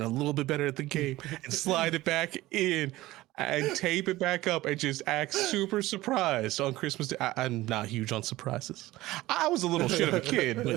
a little bit better at the game, and slide it back in, and tape it back up and just act super surprised on Christmas Day. I'm not huge on surprises. I was a little shit of a kid,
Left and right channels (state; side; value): quieter; left; 17.6 dB